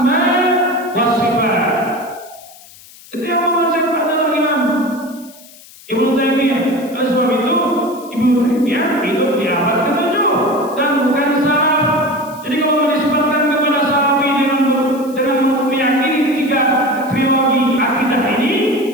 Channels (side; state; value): left; noise; hiss, 22 dB below the sound